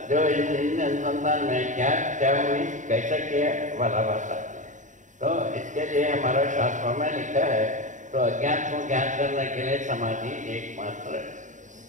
जो इन अनुसंधान में क्या हुई, कैसा किया वाला बात आती है। तो इसके लिए हमारा शास्त्रों में लिखा है, तो अज्ञान को ज्ञान करने के लिए समाधि एकमात्र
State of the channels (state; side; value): late; left; 0.36 ms